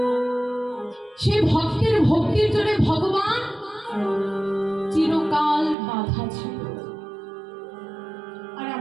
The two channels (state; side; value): drops out; left; at 5.8 s